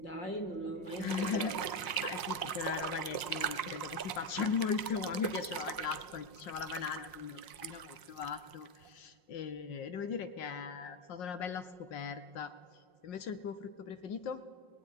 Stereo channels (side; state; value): right; late; 5.6 ms